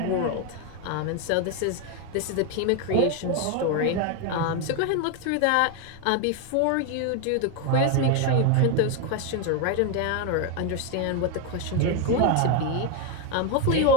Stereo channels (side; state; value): both; different; correlation 0.01